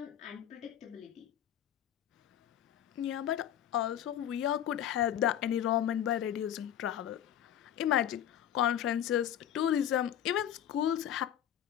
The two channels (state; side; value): quieter; right; 10.6 dB